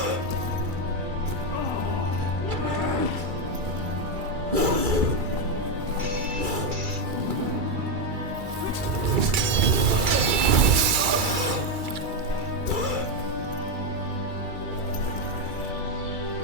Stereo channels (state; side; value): late; left; 2.3 ms